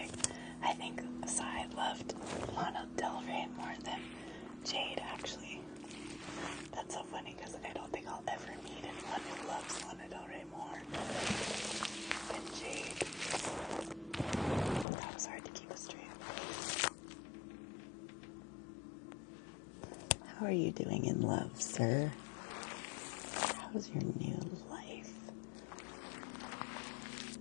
I think Sai loved Lana Del Rey more than Jade, actually. That's so funny because I don't think I'll ever meet anyone who loves Lana Del Rey more than Jade. That was hard to keep a straight. How are you doing in love, sir? How's your new life?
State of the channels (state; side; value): drops out; right; at 14.9 s